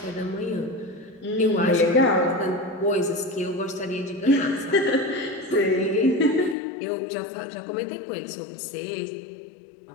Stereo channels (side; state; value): right; drops out; at 6.6 s